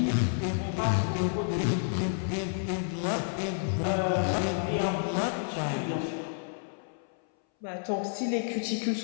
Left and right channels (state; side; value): silent; right; 58 dB below the other